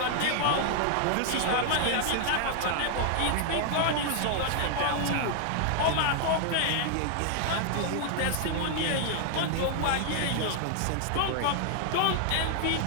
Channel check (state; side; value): different; both; correlation 0.00